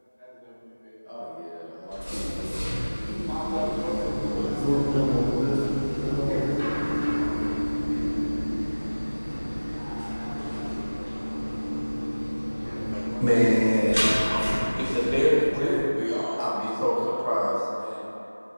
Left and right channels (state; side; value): inverted; both; correlation -1.00